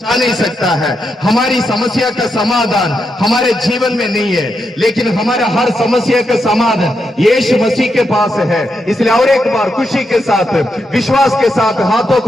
नहीं सकता है। हमारी समस्या का समाधान हमारे जीवन में नहीं है, लेकिन हमारा हर समस्या का समाधान यीशु मसीह के पास है। इसलिए और एक बार खुशी के साथ, विश्वास के साथ हाथों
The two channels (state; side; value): normal; both; correlation 0.84